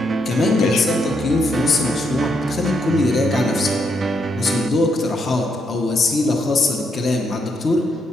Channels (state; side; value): normal; both; correlation 0.77